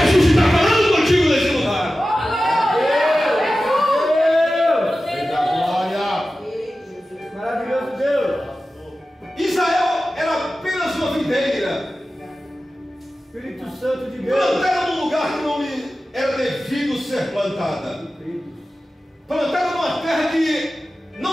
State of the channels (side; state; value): both; normal; correlation 0.94